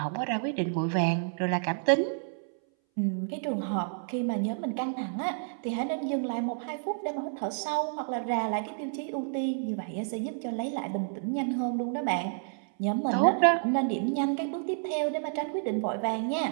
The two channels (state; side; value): silent; left; 58 dB below the other